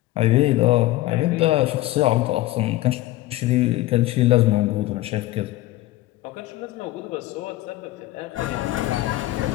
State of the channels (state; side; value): quieter; right; 16.9 dB